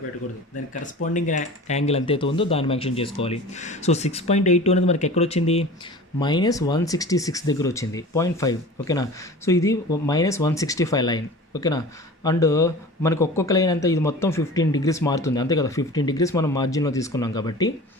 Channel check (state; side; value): normal; both; correlation 0.38